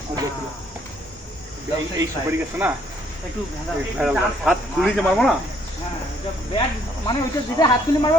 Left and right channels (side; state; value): both; normal; correlation 0.66